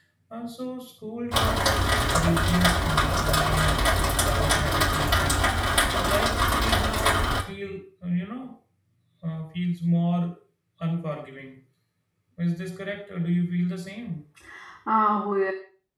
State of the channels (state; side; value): identical; both; correlation 1.00